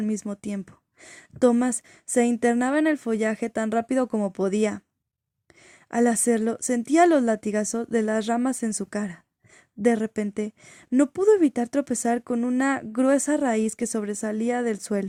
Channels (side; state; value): both; identical; correlation 1.00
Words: mismo tiempo. Thomas se internaba en el follaje tan rápido como podía. Al hacerlo, sentía los latigazos de las ramas en su cara. De repente, no pudo evitar tropezar con una gruesa raíz que sobresalía del